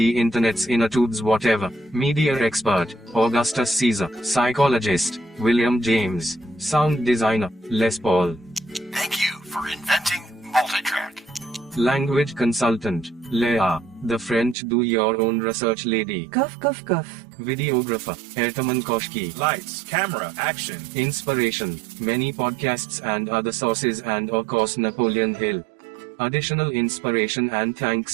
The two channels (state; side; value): drops out; left; at 14.6 s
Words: internet's inner tubes whatever. Media Expert, Augustus Caesar. Psychologist, William James. Sound Designer, Les Paul. Thank you for inventing multitrack. Language Consultant, Leah, the French do-your-own research lady. Cough, cough, cough. Videographer, Ertaman Koshki. Lights, camera, action. Inspiration, many podcasts and other sources and of course Napoleon Hill. Additional inspiration and